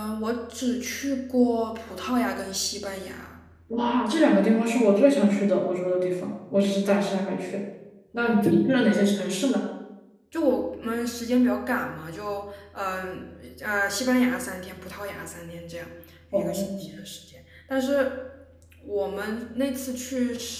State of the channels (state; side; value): identical; both; correlation 1.00